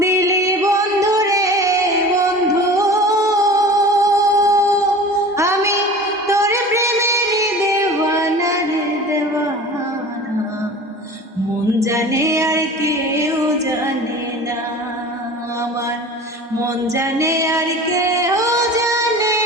দিলি বন্ধু রে বন্ধু, আমি তোর প্রেমের দেওয়ানা রে দেওয়ানা। মন জানে আর কেউ জানে না, আমার মন জানে আর কেউ জানে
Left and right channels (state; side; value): normal; both; correlation 0.39